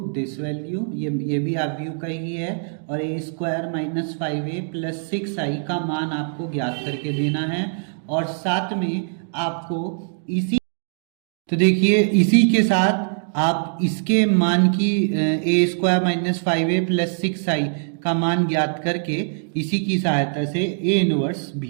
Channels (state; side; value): silent; left; digital silence